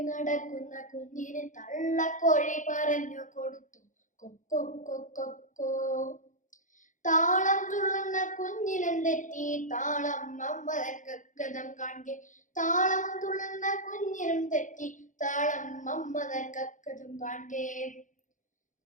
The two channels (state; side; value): late; right; 0.37 ms